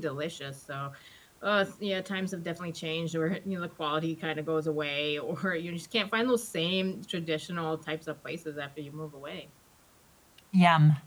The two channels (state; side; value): identical; both; correlation 1.00